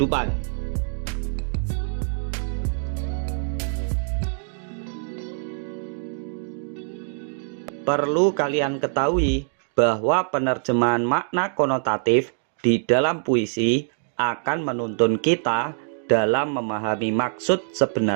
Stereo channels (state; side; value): silent; left; digital silence